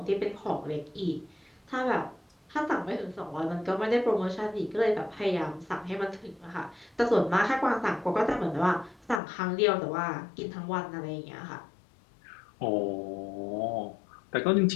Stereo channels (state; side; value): drops out; right; at 9.2 s